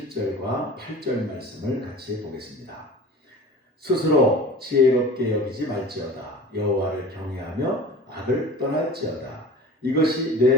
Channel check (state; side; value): normal; both; correlation 0.39